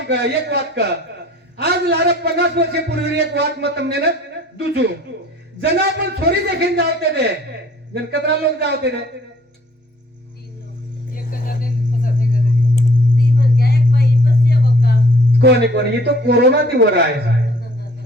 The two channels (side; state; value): both; normal; correlation 0.56